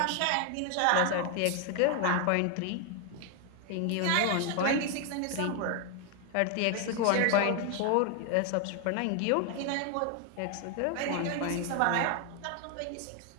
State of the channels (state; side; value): different; both; correlation 0.00